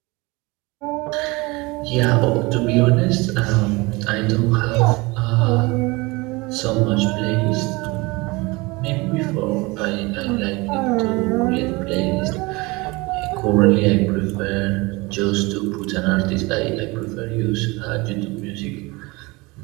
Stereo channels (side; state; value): left; quieter; 24.2 dB